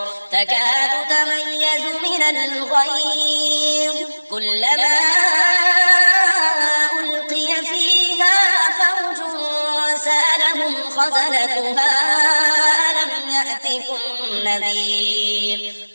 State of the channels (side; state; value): both; inverted; correlation -1.00